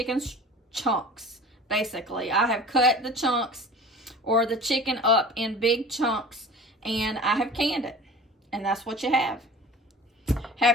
chunks. Basically, I have cut the chunks or the chicken up in big chunks and I have canned it, and that's what you have.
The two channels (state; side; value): normal; both; correlation 0.40